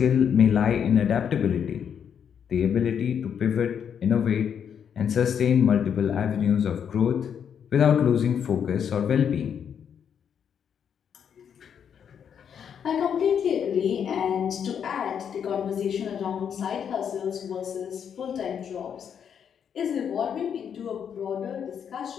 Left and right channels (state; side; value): quieter; right; 8.0 dB